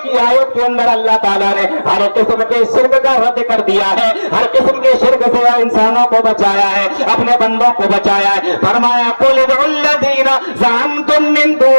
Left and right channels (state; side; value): inverted; both; correlation -1.00